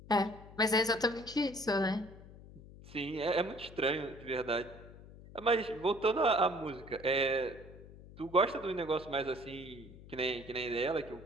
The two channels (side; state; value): left; noise; hum, 18 dB below the sound